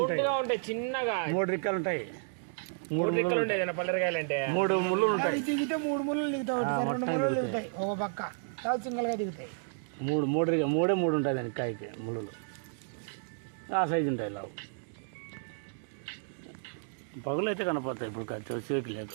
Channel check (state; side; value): silent; left; digital silence